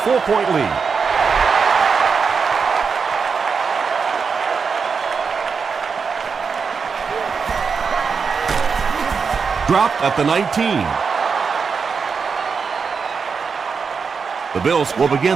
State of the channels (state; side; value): quieter; left; 5.5 dB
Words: lead. Dropped at the 19. The Bills will